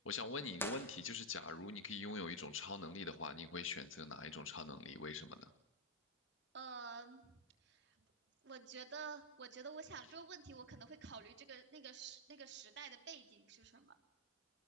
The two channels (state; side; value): normal; both; correlation -0.02